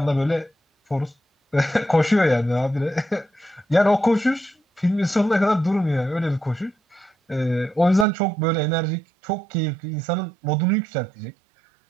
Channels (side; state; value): left; drops out; at 8.1 s